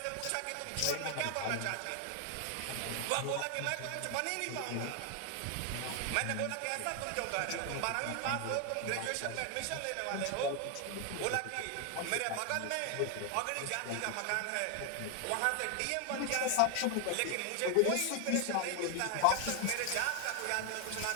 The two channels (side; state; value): both; different; correlation 0.00